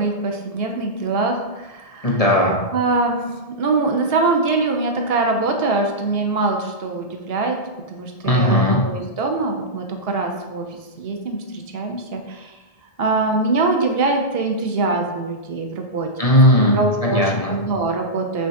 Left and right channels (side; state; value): right; late; 1.7 ms